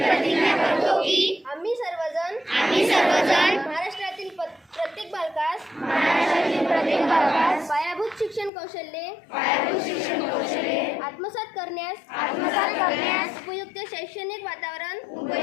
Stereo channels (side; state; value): right; drops out; at 8.5 s